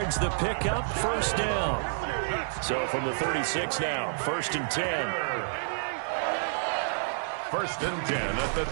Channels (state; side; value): silent; left; digital silence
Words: the pickup, first down. So from the 36 now, 1st and 10. 1st and 10 at the